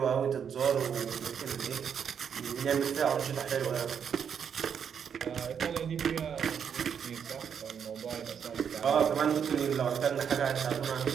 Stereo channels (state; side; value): quieter; left; 7.6 dB